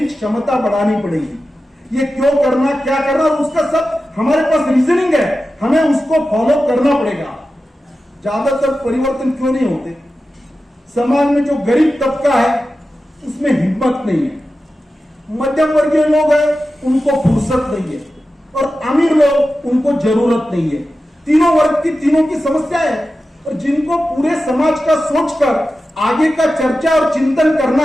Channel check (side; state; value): both; normal; correlation 0.93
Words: क्षमता बढ़ानी पड़ेगी। ये क्यों करना, क्या करना, और उसका सब हमारे पास रीजनिंग है, हमें उसको फॉलो करना पड़ेगा। ज्यादातर परिवर्तन क्यों नहीं होते? समाज में जो गरीब तबका है उसमें हिम्मत नहीं है, मध्यम वर्गीय लोग हैं उनको फुर्सत नहीं है, और अमीर लोग उनको जरूरत नहीं है। तीनों वर्ग की तीनों की समस्या है, और जिनको पूरे समाज का सोचकर आगे का चर्चा और चिंतन